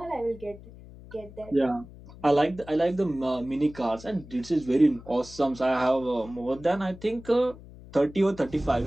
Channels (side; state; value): left; noise; hum, 18 dB below the sound